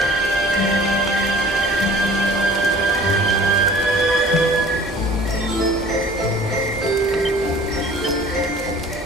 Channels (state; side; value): normal; both; correlation 0.48